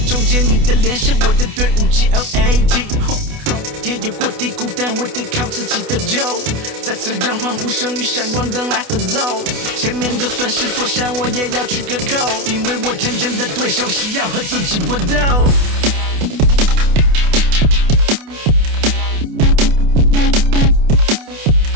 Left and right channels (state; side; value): late; left; 28 ms